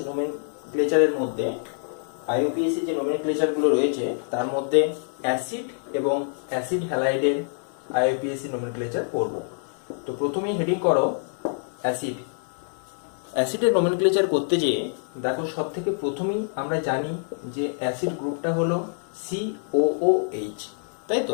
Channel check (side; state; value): right; silent; 60 dB below the other